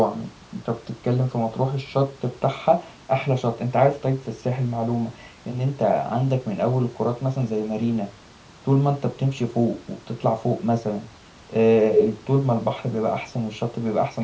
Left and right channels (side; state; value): both; identical; correlation 1.00